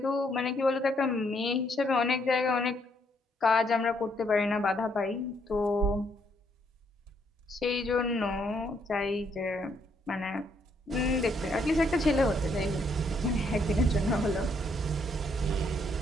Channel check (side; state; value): both; normal; correlation 0.72